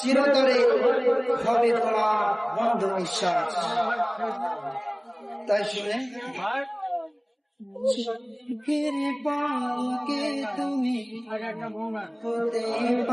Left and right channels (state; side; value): identical; both; correlation 1.00